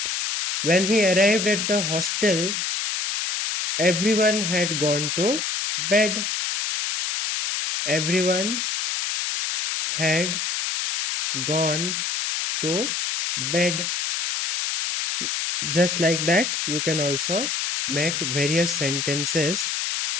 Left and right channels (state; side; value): noise; left; hiss, 1 dB below the sound